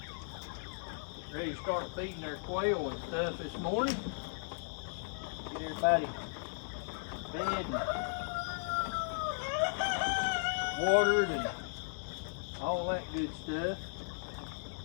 Ready to start feeding their quail and stuff this morning. Get everybody fed and watered and all that good stuff.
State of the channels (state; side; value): silent; right; digital silence